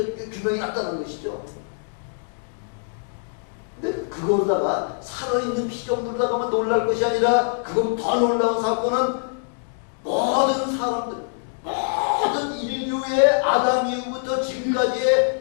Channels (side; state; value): right; silent; digital silence